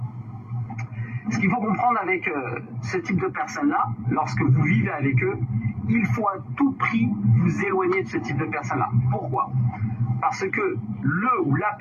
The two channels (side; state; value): both; identical; correlation 1.00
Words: Ce qu'il faut comprendre avec ce type de personnes-là, lorsque vous vivez avec eux, il faut à tout prix vous éloigner de ce type de personnes-là. Pourquoi ? Parce que le ou la